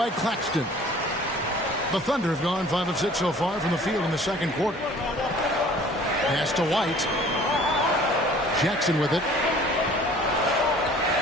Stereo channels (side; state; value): both; normal; correlation 0.50